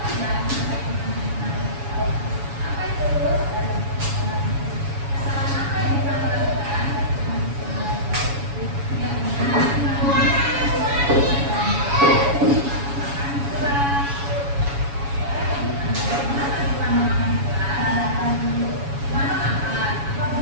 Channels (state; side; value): late; left; 7.1 ms